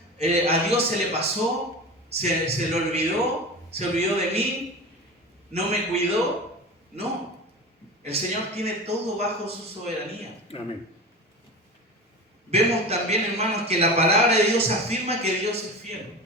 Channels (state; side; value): normal; both; correlation 0.30